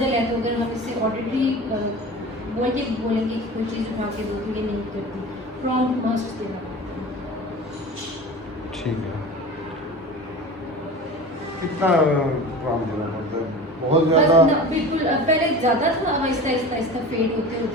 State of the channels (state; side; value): normal; both; correlation 0.35